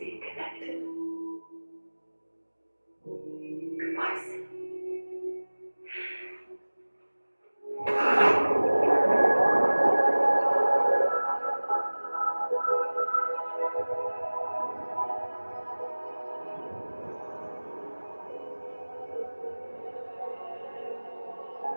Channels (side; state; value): both; inverted; correlation -1.00